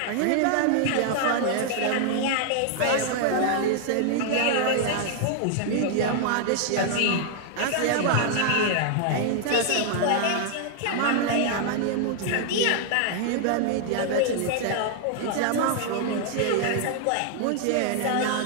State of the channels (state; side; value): different; both; correlation 0.00